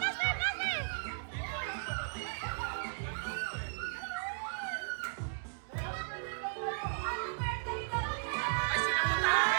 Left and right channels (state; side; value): silent; left; digital silence